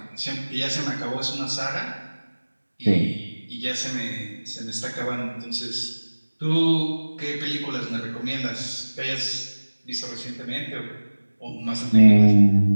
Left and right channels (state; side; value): inverted; both; correlation -1.00